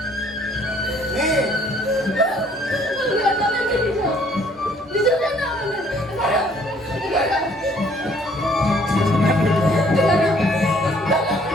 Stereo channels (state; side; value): normal; both; correlation 0.61